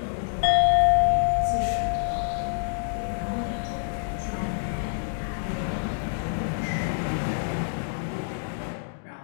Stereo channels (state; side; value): silent; right; digital silence